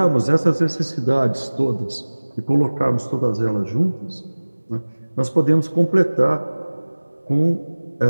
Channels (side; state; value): both; inverted; correlation -1.00